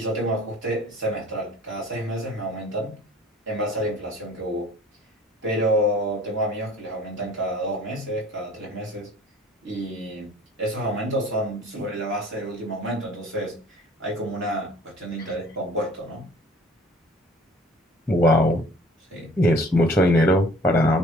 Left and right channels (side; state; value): both; normal; correlation 0.49